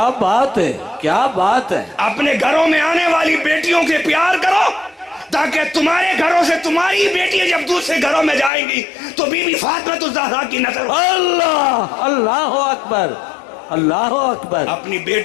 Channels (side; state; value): right; drops out; at 8.5 s